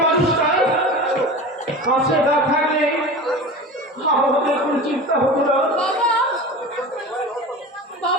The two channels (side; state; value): both; normal; correlation 0.32